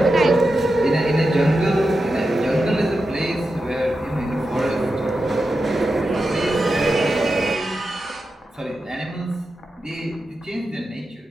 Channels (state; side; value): normal; both; correlation 0.89